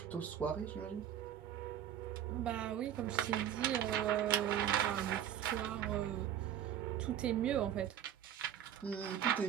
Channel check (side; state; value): left; quieter; 10.3 dB